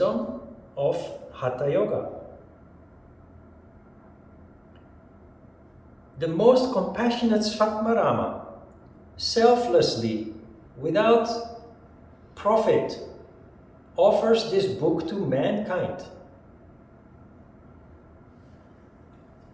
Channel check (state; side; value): identical; both; correlation 1.00